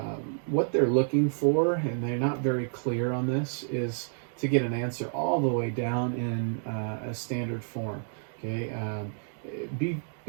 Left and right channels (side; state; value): left; silent; digital silence